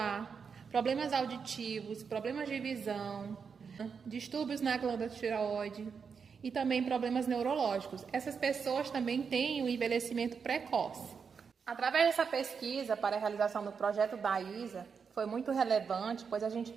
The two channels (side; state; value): left; quieter; 6.0 dB